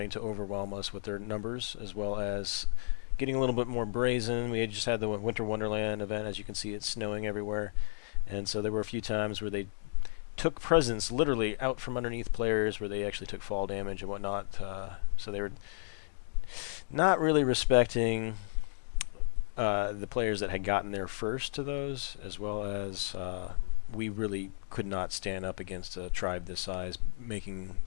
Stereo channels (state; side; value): silent; right; digital silence